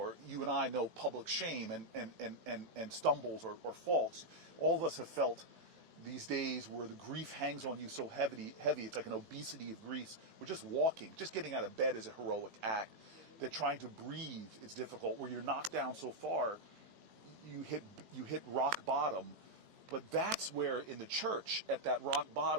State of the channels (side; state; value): left; late; 20 ms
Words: you and I know public shame and stumbles or faults, all of us have felt these days where the grief hangs on you so heavy, it's like an obesity of grief. We're just walking, just getting out of bed is a heroic act. That trying to breathe is difficult, where you're knocked down so far, you hit rock bottom. But that's where in the church, at that rock